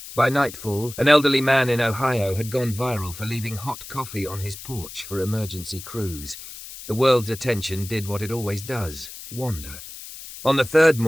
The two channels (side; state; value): left; noise; hiss, 13 dB below the sound